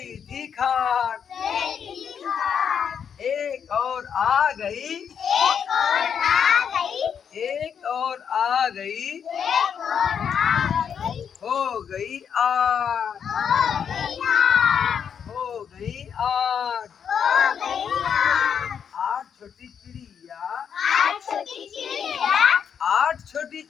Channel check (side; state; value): right; quieter; 7.6 dB